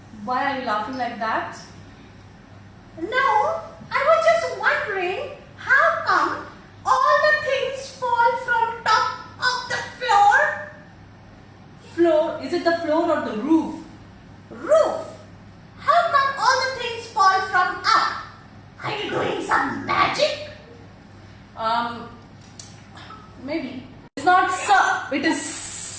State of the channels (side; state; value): both; identical; correlation 1.00